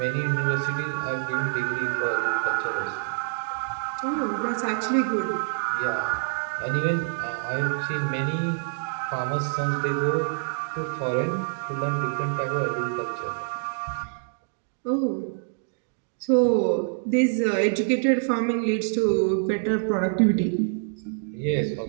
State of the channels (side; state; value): left; silent; digital silence